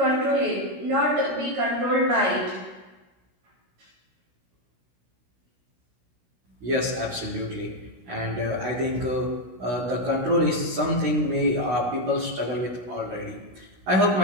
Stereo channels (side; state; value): left; late; 16 ms